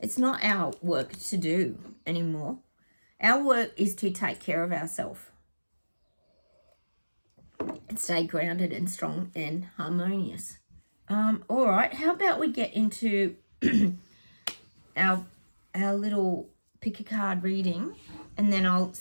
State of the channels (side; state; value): both; inverted; correlation -1.00